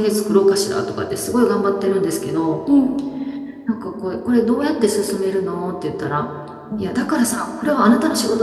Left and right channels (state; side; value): identical; both; correlation 1.00